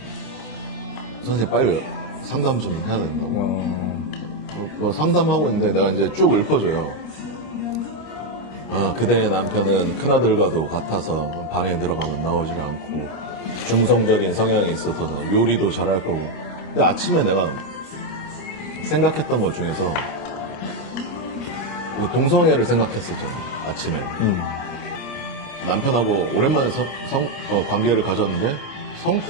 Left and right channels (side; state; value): right; late; 25 ms